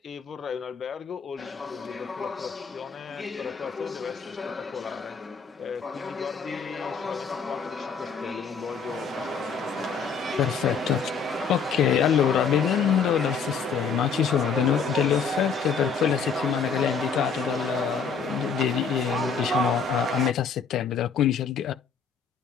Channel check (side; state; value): right; quieter; 5.8 dB